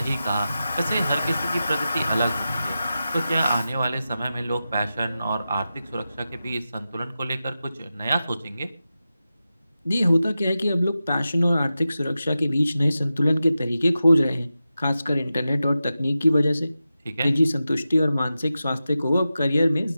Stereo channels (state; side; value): inverted; both; correlation -0.92